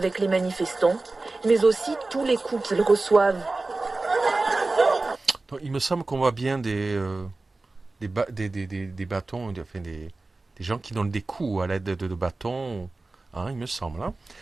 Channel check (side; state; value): left; quieter; 3.3 dB